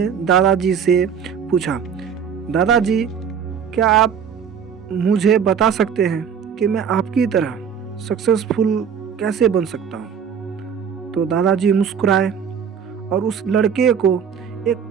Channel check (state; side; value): quieter; left; 7.4 dB